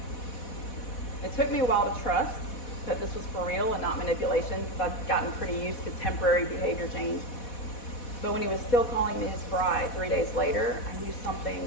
It took me a while to trust that this was for real and not manipulation, because I'd gotten pretty used to temporary behavior change. But when he was still calling me his bride 3 days later, I knew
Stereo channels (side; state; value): right; late; 4.1 ms